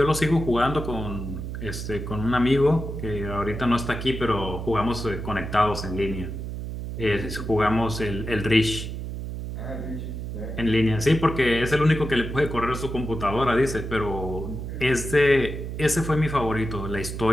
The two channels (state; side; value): noise; right; hum, 6 dB below the sound